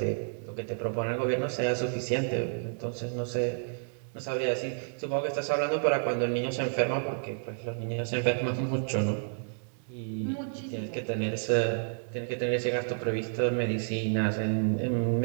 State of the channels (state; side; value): silent; left; digital silence